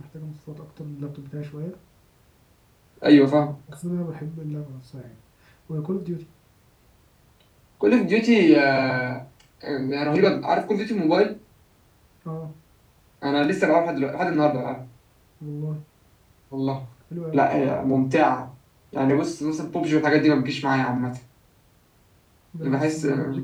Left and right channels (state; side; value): identical; both; correlation 1.00